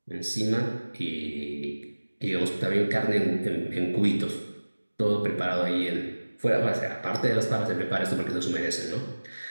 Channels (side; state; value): both; inverted; correlation -1.00